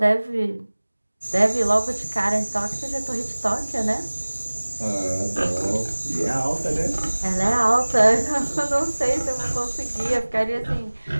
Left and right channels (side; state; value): both; inverted; correlation -1.00